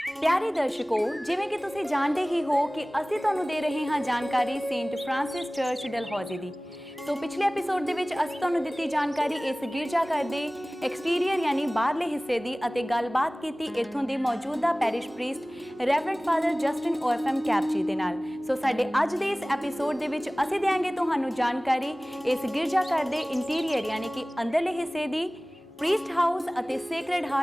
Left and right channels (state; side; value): normal; both; correlation 0.98